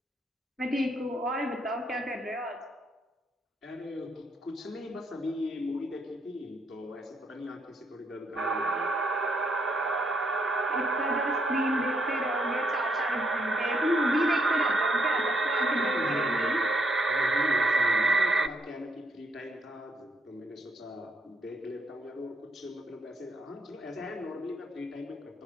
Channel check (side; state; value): both; normal; correlation 0.74